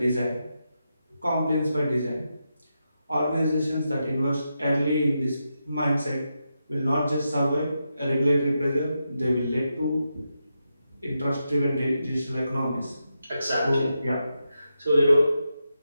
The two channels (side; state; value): both; inverted; correlation -0.86